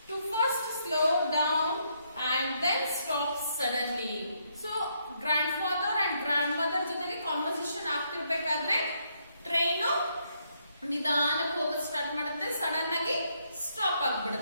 to first slow down and then stop suddenly. So grandfather and grandmother ಜೊತೆಗೆ conversation ಆಗ್ತಿರ್ಬೇಕಾದ್ರೆ train ನಿಧಾನಕ್ಕೆ ಹೋಗೋದು start ಮಾಡುತ್ತೆ. Sudden ಆಗಿ stop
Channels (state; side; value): inverted; both; correlation -0.74